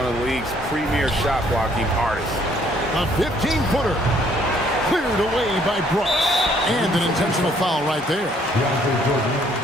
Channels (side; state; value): both; normal; correlation 0.64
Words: of the league's premier shot blocking artists. A 15-footer. Cleared away by Brooks. And an intentional foul right there.